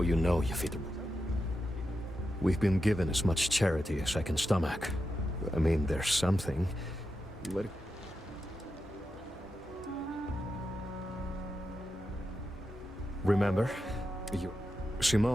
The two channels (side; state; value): both; normal; correlation 0.88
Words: you know you fit. We've been given as much charity as I can stomach. I mean, there's something. But... Remember?